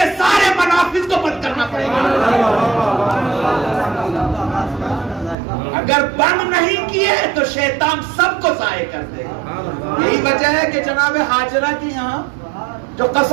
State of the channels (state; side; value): drops out; left; at 5.4 s